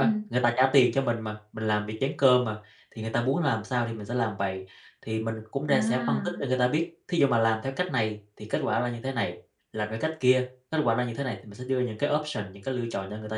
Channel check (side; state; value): both; identical; correlation 1.00